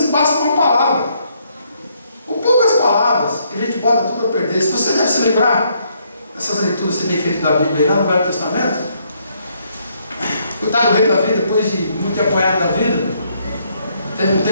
basta uma palavra, ou poucas palavras, que a gente bota tudo a perder. Se você deve se lembrar dessas leituras que você tem feito da Bíblia aí lá no Velho Testamento, coitado do rei Davi, depois de muito apanhado da vida, teve um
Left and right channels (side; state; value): both; inverted; correlation -0.71